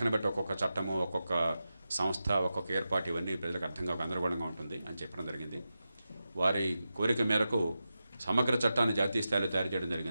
బట్టి ఒక్కొక్క చట్టము, ఒక్కొక్క సంస్థ, ఒక్కొక్క ఏర్పాటు ఇవన్నీ ప్రజలకు అర్థంగా గందరగోళంగా ఉంటుంది అని చెప్పడం జరిగింది. వారి కోరిక మేరకు సమగ్ర చట్టాన్ని జాతీయ స్థాయిలో తయారు చేయడం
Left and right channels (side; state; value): both; inverted; correlation -0.91